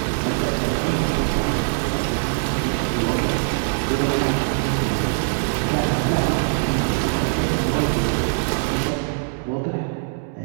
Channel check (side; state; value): left; silent; digital silence